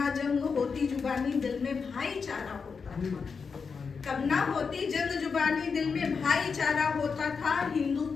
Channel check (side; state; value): right; quieter; 5.5 dB